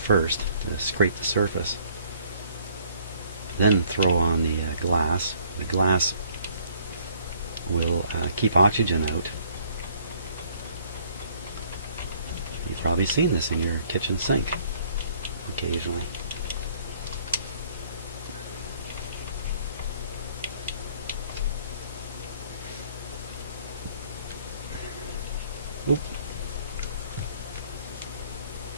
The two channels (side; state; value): both; inverted; correlation -0.61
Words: to scrape the surface. Then throw on the glass. The glass will keep oxygen out. You've probably seen this in your kitchen sink occasionally. Oop.